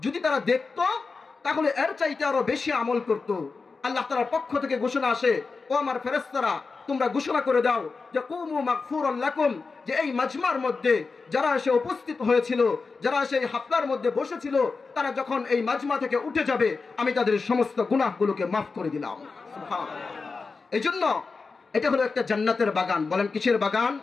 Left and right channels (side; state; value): right; quieter; 4.4 dB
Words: যদি তারা দেখতো তাহলে এর চাইতে আরো বেশি আমল করত। আল্লাহ তাআলার পক্ষ থেকে ঘোষণা আসে, ও আমার ফেরেশতারা, তোমরা ঘোষণা করে দাও যে কুমু মাগফুরান লাকুম, যে এই মাজমার মধ্যে যারা এসে উপস্থিত হয়েছিল, যারা এসে এই হাফলার মধ্যে বসেছিল, তারা যখন এই মাজমা থেকে উঠে যাবে, আমি তাদের সমস্ত গুনাহগুলোকে মাফ করে দিলাম। সুবহানাল্লাহ। এইজন্য এটা হলো একটা জান্নাতের বাগান। বলেন কিসের বাগান?